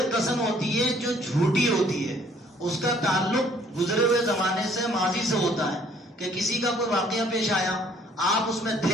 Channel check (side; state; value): both; normal; correlation 0.60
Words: قسم ہوتی ہے جو جھوٹی ہوتی ہے، اس کا تعلق گزرے ہوئے زمانے سے، ماضی سے ہوتا ہے، کہ کسی کا کوئی واقعہ پیش آیا، آپ اس میں